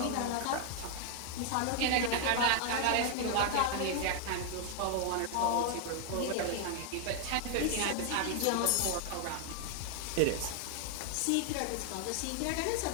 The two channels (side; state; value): both; different; correlation 0.00